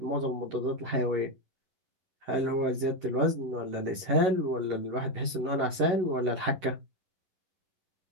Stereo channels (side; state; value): left; late; 11 ms